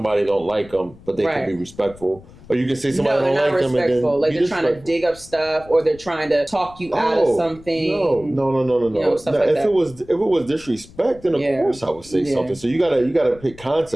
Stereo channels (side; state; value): left; noise; rumble, 21 dB below the sound